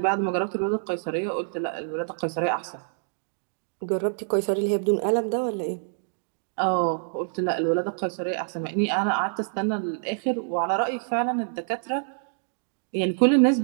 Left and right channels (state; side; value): silent; left; digital silence